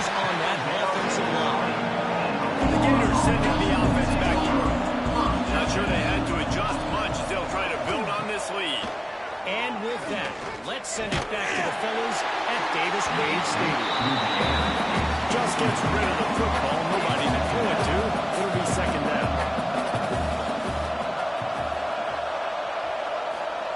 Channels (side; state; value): both; identical; correlation 1.00